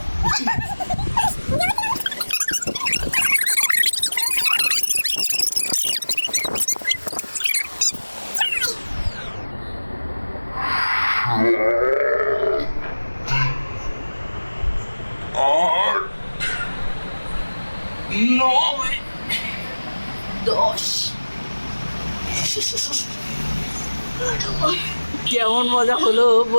কেমন মজা হলো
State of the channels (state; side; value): inverted; both; correlation -1.00